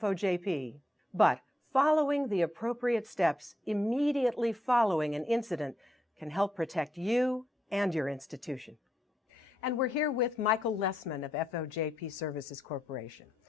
But following the appropriate steps immediately following an incident can help protect you and your institution. And we're here with Michael Lessman of FOJP Services Corporation.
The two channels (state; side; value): normal; both; correlation 0.81